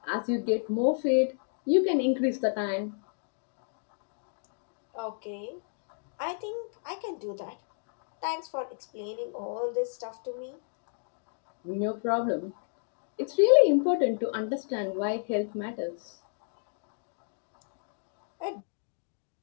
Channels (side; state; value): right; silent; digital silence